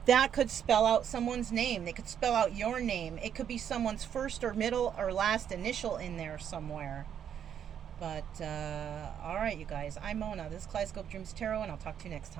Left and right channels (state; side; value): quieter; left; 8.9 dB